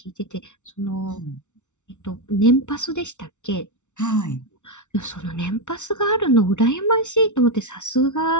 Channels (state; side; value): late; right; 0.84 ms